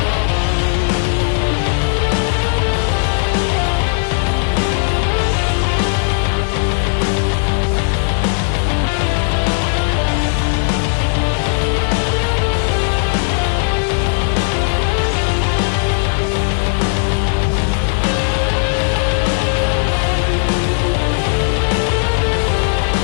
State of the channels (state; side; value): silent; right; digital silence